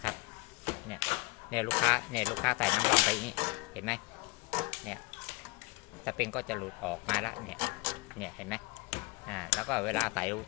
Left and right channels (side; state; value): right; quieter; 25.1 dB